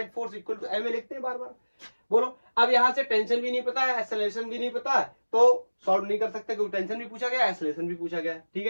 force equal to M लिखते हैं बार बार। बोलो, अब यहां से टेंशन भी नहीं पता है, एक्सेलरेशन भी नहीं पता है, तो सॉल्व नहीं कर सकते क्योंकि टेंशन भी पूछा गया, एक्सेलरेशन भी पूछा गया। ठीक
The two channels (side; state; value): both; inverted; correlation -1.00